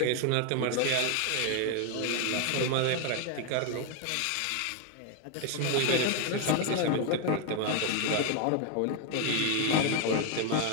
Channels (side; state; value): both; different; correlation 0.01